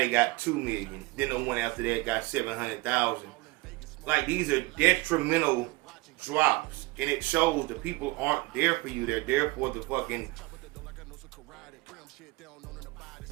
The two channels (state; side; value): quieter; left; 22.4 dB